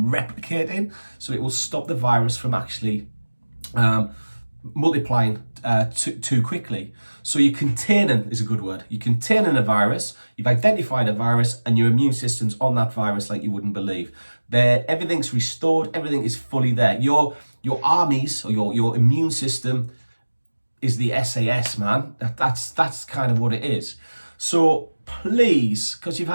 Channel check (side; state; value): both; inverted; correlation -1.00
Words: replicating, so it will stop the virus from actually multiplying too quickly. So you're containing is a good word. You're containing a virus, you've identified a virus, and your immune system's on that virus like you wouldn't believe. Everything's restored, everything is fully there. Your armies or your immune system is the SAS, man. That's kind of what it is. So please, because you've